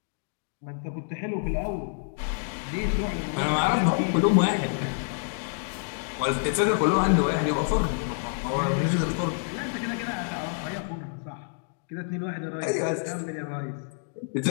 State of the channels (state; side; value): silent; right; 58 dB below the other